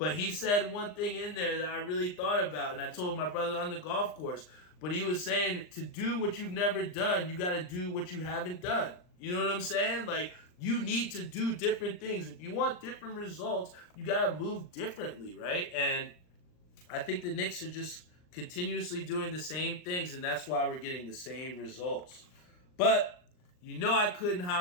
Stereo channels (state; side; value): late; right; 39 ms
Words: he said one thing in there that I really thought about, and I told my brother on the golf course. But he was saying, to do what you've never done, you got to do what you haven't done. You know what I'm saying? Like, you need to do different things. If you want different results, you got to move differently, right? And I think the Knicks are just continuously doing the same things, and that's why we're getting the same results. But I couldn't